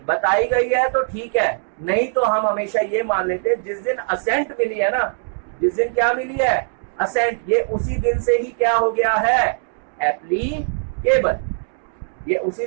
बताई गई है तो ठीक है, नहीं तो हम हमेशा ये मान लेते हैं जिस दिन असेंट मिली है ना, जिस दिन क्या मिली है, असेंट, ये उसी दिन से ही क्या हो गया है, एप्लीकेबल। ये उसी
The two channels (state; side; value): silent; left; 65 dB below the other